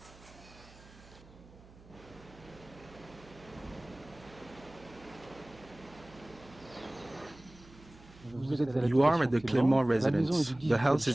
You are at the Clermont Residence. The house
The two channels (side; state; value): right; noise; hum, 22 dB below the sound